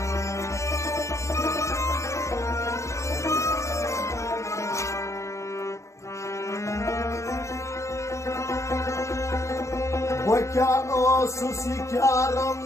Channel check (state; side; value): late; right; 0.14 ms